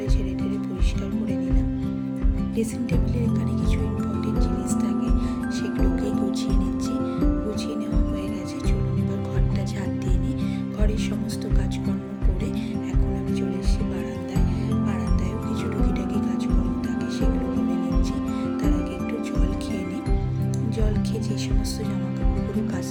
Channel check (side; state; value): both; identical; correlation 1.00